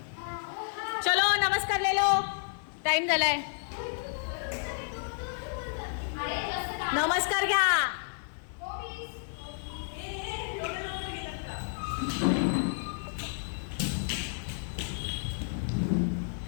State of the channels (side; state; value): right; silent; 57 dB below the other